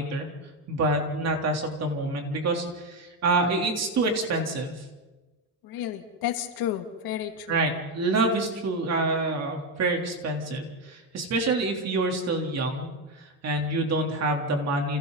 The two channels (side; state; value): both; normal; correlation 0.10